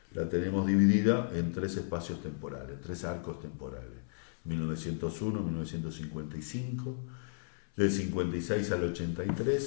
la tenemos dividida en 3 espacios temporales, 3 arcos temporales, 1901, 1955, del 56 al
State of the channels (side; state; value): right; silent; 55 dB below the other